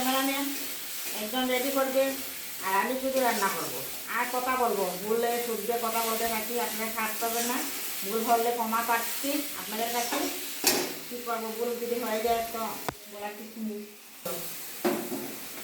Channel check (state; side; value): identical; both; correlation 1.00